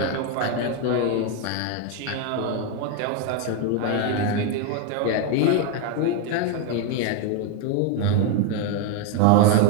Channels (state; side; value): different; both; correlation 0.01